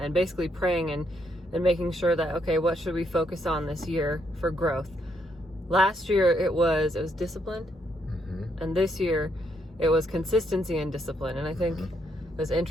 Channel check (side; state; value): both; normal; correlation 0.75